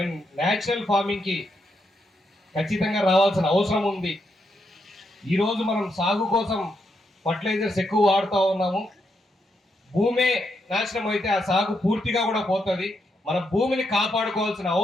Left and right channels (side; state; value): both; normal; correlation 0.80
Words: న్యాచురల్ ఫార్మింగ్కి ఖచ్చితంగా రావాల్సిన అవసరం ఉంది. ఈరోజు మనం సాగు కోసం ఫర్టిలైజర్స్ ఎక్కువ వాడుతూ ఉన్నాము. భూమే నాశనం అయితే ఆ సాగు పూర్తిగా కూడా పోతుంది. మన భూమిని కాపాడుకోవాల్సిన